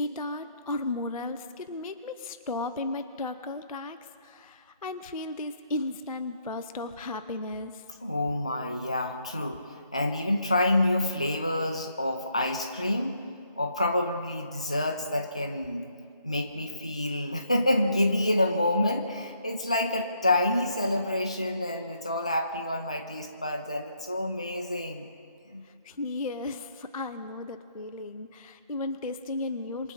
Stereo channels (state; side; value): inverted; both; correlation -0.72